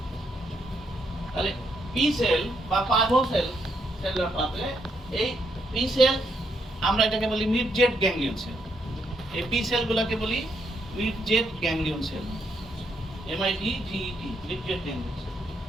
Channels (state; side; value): normal; both; correlation 0.76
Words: তাহলে পি সেল বা পার্ভো সেল সেলুলার পাথওয়ে, এই পি সেল আমরা এটাকে বলি মিড জেট গ্যাংলিয়ন সেল। এই পি সেলগুলোকে বলি midget ganglion cell, MIDGET, midget ganglion cell.